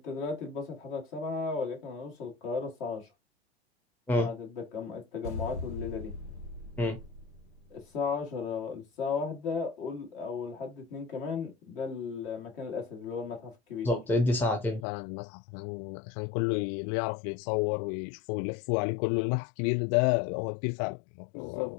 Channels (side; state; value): right; drops out; at 14.9 s